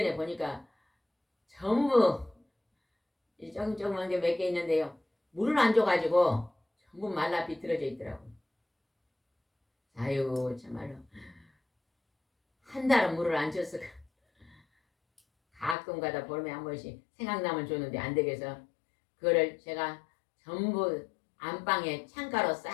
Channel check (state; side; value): drops out; right; at 15.8 s